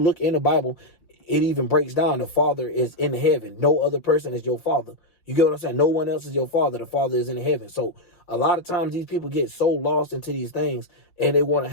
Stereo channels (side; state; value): right; late; 5.7 ms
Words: in the Bible, it even breaks down the Father is in heaven. No other person is your Father. You get what I'm saying? No one else is your Father. The Father is in heaven. So a lot of times these people get so lost into these things and they want to